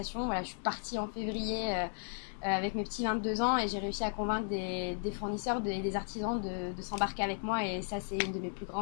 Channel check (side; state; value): right; silent; 54 dB below the other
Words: Voilà, je suis partie en février avec mes petits 22 ans et j'ai réussi à convaincre des fournisseurs, des artisans de s'embarquer avec moi et ça, c'est une de mes plus